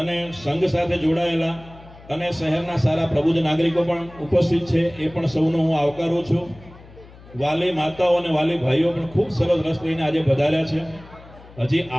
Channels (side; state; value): left; noise; hum, 21 dB below the sound